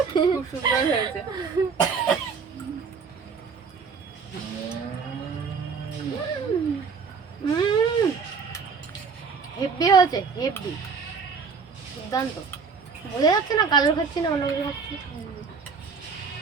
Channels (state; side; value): quieter; left; 5.4 dB